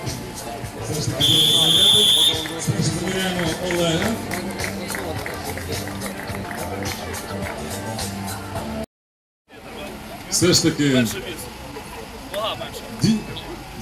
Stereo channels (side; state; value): both; identical; correlation 1.00